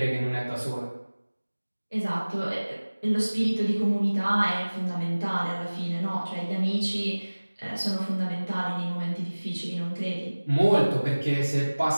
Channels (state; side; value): inverted; both; correlation -1.00